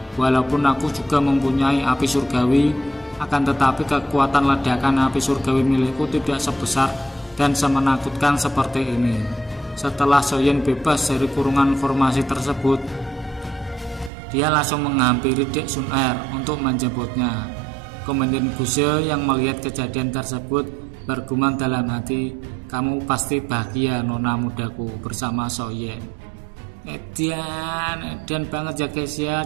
walaupun aku juga mempunyai api surgawi, akan tetapi kekuatan ledakan api surgawi milikku tidak sebesar dan semenakutkan seperti ini. Setelah Soyen bebas dari kurungan formasi tersebut, dia langsung menghampiri Dek Sun Er untuk menjemputnya. Komandan Guse yang melihat kejadian tersebut bergumam dalam hati, kamu pasti bahagia nona mudaku bersama Soyen. Edan banget ya guys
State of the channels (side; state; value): left; drops out; at 14.1 s